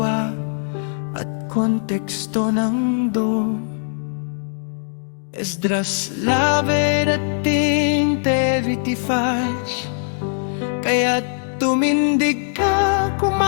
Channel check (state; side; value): silent; right; digital silence